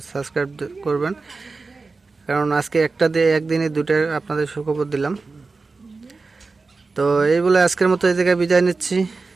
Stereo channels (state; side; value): quieter; left; 4.0 dB